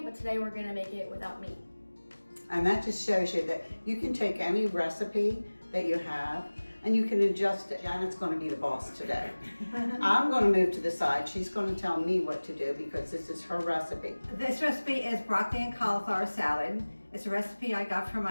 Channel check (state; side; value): inverted; both; correlation -1.00